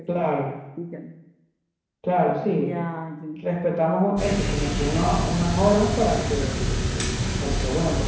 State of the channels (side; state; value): both; identical; correlation 1.00